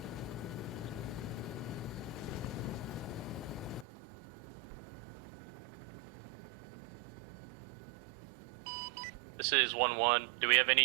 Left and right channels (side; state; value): left; drops out; at 3.9 s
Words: This is 1-1. Do we have